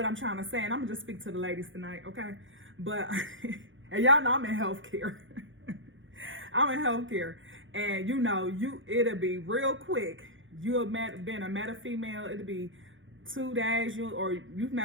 I'm trying to say, and I'm gonna just speak to the ladies tonight, okay? But and y'all know I'm in healthcare. I'm in healthcare, and it'll be real quick. You've been a met a female, it'll be 2 days, you've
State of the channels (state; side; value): late; left; 0.56 ms